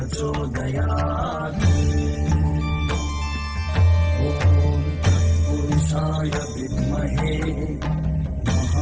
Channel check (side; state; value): both; identical; correlation 1.00